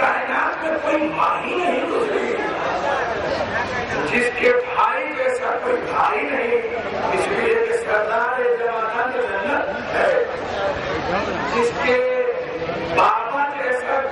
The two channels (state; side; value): identical; both; correlation 1.00